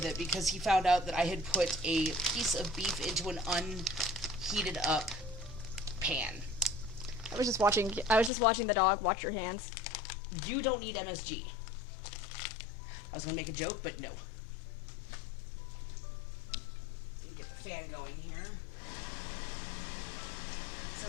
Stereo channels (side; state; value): right; drops out; at 8.3 s